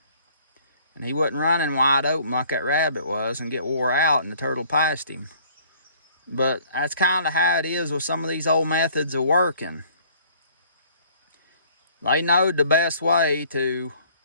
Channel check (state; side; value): inverted; both; correlation -0.56